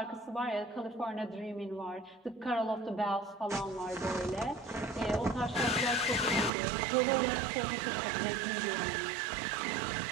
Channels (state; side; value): drops out; left; at 6.5 s